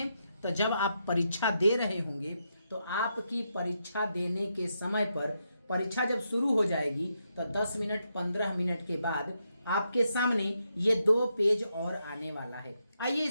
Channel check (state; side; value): inverted; both; correlation -0.82